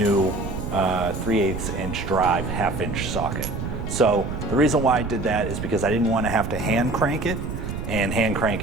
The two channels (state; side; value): noise; right; rumble, 5 dB below the sound